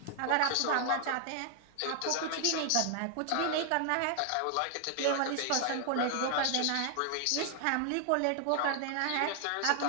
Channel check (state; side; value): different; both; correlation 0.00